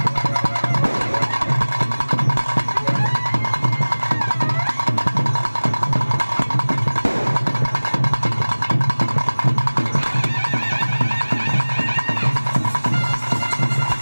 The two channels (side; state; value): both; inverted; correlation -1.00